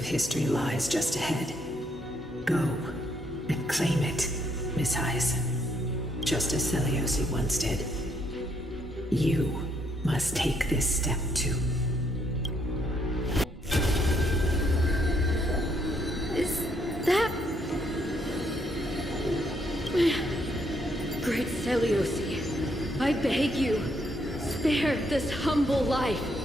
history lies just ahead. Go and claim it, Miss Hyacine. Just as Seliosi once did. You must take this step too. Is that... Great Seliosi, I beg you, spare this humble life.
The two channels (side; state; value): both; normal; correlation 0.73